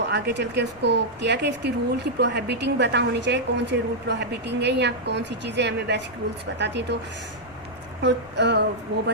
आगे चल के उसको किया कि इसकी रूल की प्रोहिबिटिंग पता होनी चाहिए, कौन से रूल प्रोहिबिटिंग है या कौन सी चीज़ें हमें बेसिक रूल्स बताती हैं। तो वो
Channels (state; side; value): noise; left; rumble, 23 dB below the sound